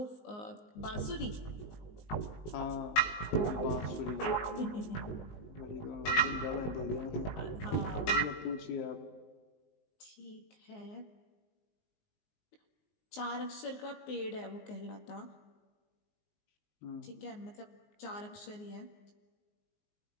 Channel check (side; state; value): right; late; 19 ms